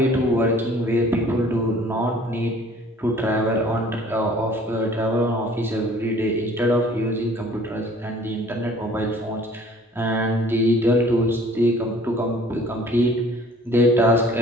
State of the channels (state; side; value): normal; both; correlation 0.53